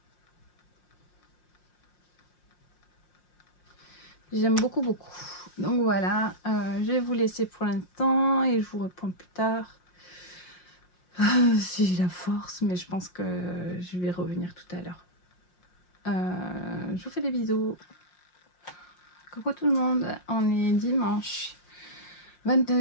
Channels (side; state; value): right; late; 5.6 ms